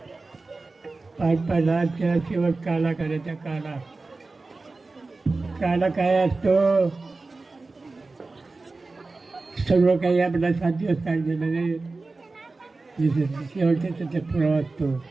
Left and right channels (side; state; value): left; quieter; 3.6 dB